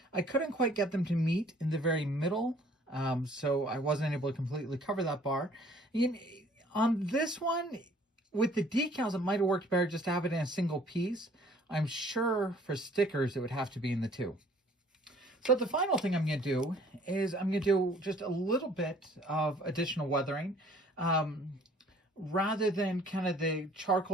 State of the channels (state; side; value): normal; both; correlation 0.56